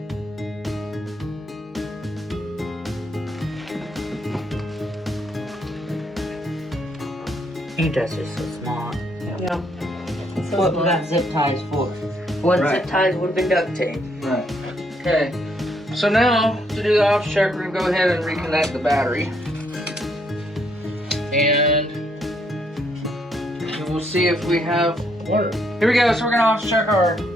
Ain't that just so small? Yeah. So What we smart. got zip ties for? One Right. zip ties would have been duct tape. Right. Okay. So now, to do the ops check, we're gonna go ahead and reconnect the battery. And we'll see if we have water. Here we go, so we're gonna ops check our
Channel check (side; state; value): both; normal; correlation 0.72